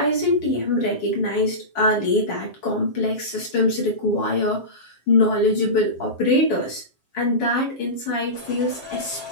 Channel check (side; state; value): right; late; 7.5 ms